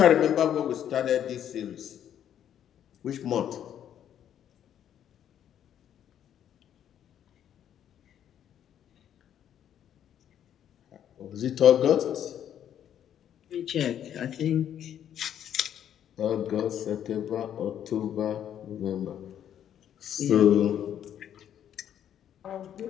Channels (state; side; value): quieter; right; 10.0 dB